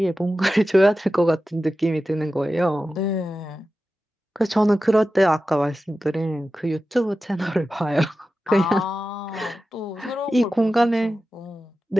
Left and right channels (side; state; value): both; normal; correlation 0.93